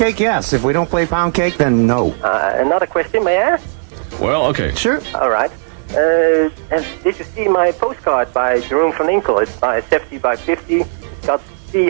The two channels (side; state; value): left; silent; digital silence